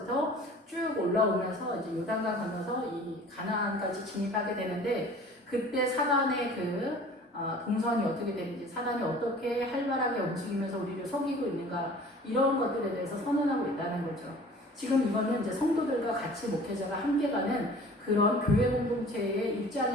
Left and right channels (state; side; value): normal; both; correlation 0.46